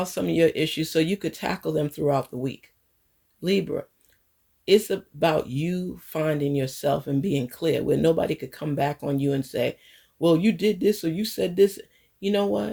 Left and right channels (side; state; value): both; identical; correlation 1.00